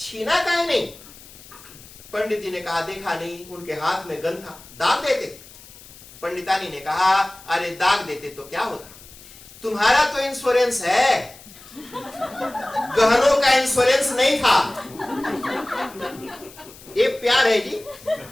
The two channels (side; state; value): left; noise; hiss, 20 dB below the sound